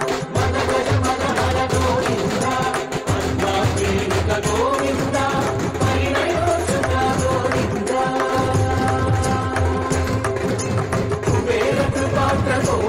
మద గజ మద హర గోవింద పద్మాకేలిక గోవింద పరిణయోచుత గోవింద కుబేర కృపాత్ర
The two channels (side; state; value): both; identical; correlation 1.00